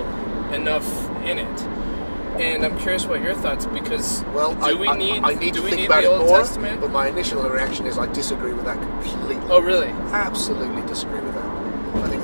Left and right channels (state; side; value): inverted; both; correlation -1.00